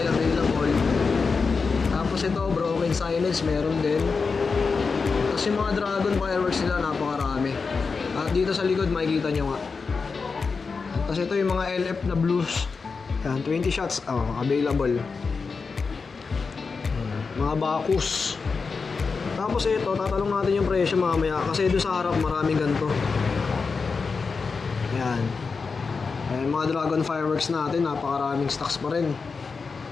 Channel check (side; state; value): right; quieter; 4.8 dB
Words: available. Tapos ito, Broken Silence, meron din. Tapos yung mga dragon fireworks nila, napakarami. At dito sa likod, makikita nyo nga. Tapos ito yung mga LF na blues. Yan, 20 shots, available. Mga Bacchus. Tapos ito, tatalong natin yung presyo mamaya. Kasi doon sa harap, maraming ganito. Yan. Ayan, mga dragon fireworks natin, napakaraming stocks pa rin.